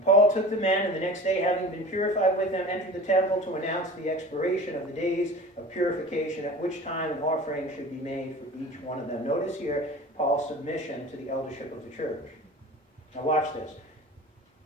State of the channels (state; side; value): normal; both; correlation 0.38